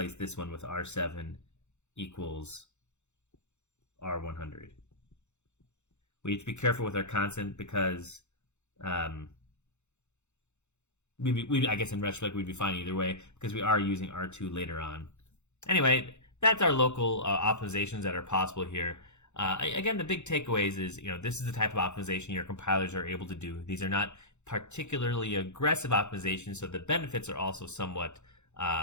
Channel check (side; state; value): right; late; 0.83 ms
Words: this one with R7 equals R100. We have to be careful with our constant because I guess in retrospect we'd be fine either way because we are using R2 later on. Anyway, that's our local optimizations that are possible here. Again, the big takeaways is, this is the type of optimization your compilers are able to do. These are not particularly aggressive optimizations, so the benefits are also somewhat